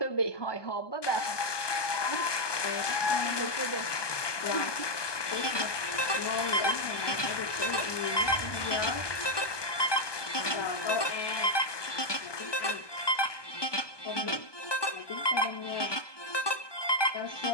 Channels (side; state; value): right; late; 1.2 ms